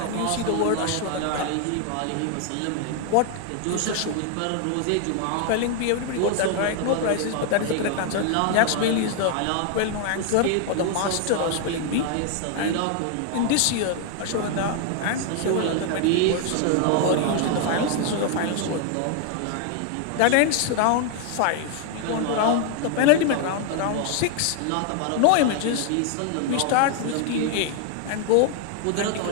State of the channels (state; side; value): different; both; correlation 0.00